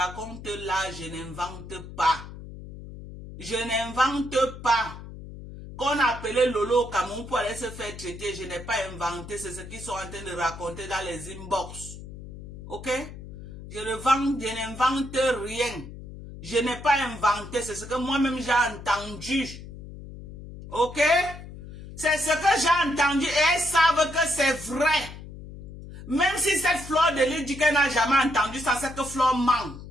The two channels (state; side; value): noise; left; hum, 13 dB below the sound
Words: là, je n'invente pas. Je n'invente pas. Qu'on appelait Lolo au Cameroun pour aller se faire traiter, je n'ai pas inventé, c'est ce qu'ils sont en train de raconter dans les inbox. Ok? Je n'invente rien. Je n'ai pas inventé, c'est ce que moi-même j'ai entendu. Ok? C'est ce que j'ai entendu et elles savent que c'est vrai. Même si cette Flore de Lille dit qu'elle n'a jamais entendu ça, c'est que Flore ment.